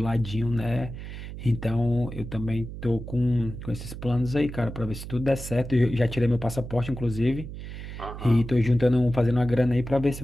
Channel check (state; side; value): noise; right; hum, 10 dB below the sound